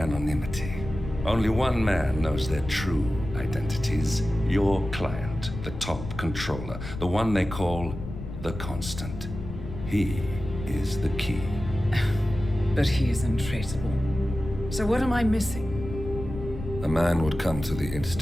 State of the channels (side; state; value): left; noise; rumble, 9 dB below the sound